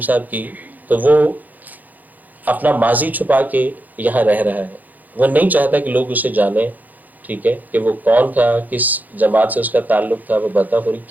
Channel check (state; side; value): late; left; 0.082 ms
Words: کی, تو وہ اپنا ماضی چھپا کے یہاں رہ رہا ہے. وہ نہیں چاہتا کہ لوگ اسے جانیں, ٹھیک ہے, کہ وہ کون تھا, کس جماعت سے اس کا تعلق تھا, وہ بتا پوری